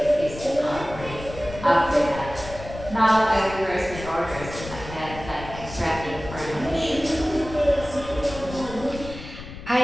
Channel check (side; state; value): left; noise; rumble, 12 dB below the sound